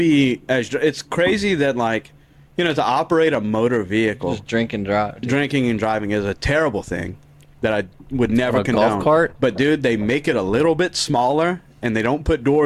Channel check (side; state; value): both; identical; correlation 1.00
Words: as. It's crazy that like, to operate a motor vehicle, just drink and drive. dude. drinking and driving is a terrible thing that I would never A golf condone. cart? But dude, they make it a little bit smaller and they don't put